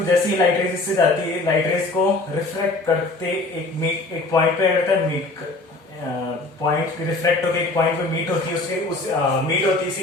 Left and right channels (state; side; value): quieter; right; 3.2 dB